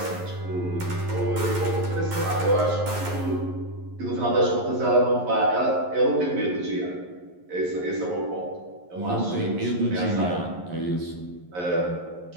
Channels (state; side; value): late; left; 11 ms